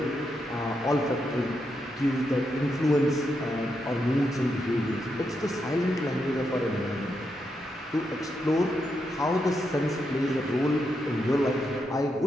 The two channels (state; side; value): normal; both; correlation 0.83